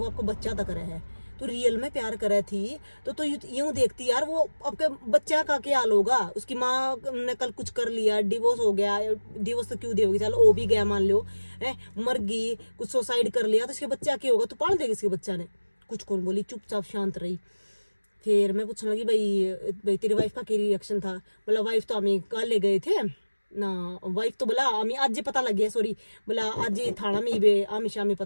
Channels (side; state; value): both; inverted; correlation -1.00